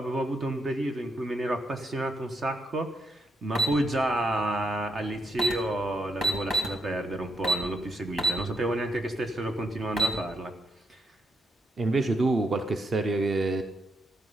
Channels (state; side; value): normal; both; correlation 0.79